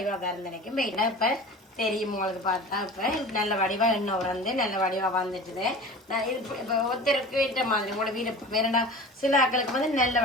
வரந்தனைக்கும் மெயினாக இப்போ தெரியும் உங்களுக்கு பார்த்தா. இப்போ நல்ல வடிவாக எண்ணெய் நல்ல வடிவாக வந்துட்டுது. நான் இது இப்போ ஒருத்தருக்கு ஏற்ற மாதிரி உங்களோட வீடு வேறண்டா. சில ஆக்களுக்கு நல்ல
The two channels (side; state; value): both; normal; correlation 0.37